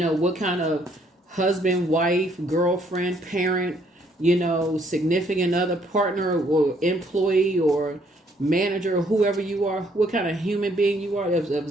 what kind of husband, wife, girlfriend, parent, you know, significant other, partner, or employee, or manager, or whoever you are, what kind of human being you are, of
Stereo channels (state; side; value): normal; both; correlation 0.67